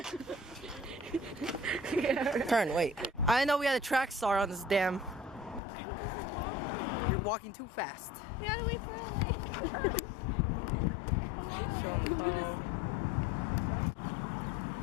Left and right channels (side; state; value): right; drops out; at 5.6 s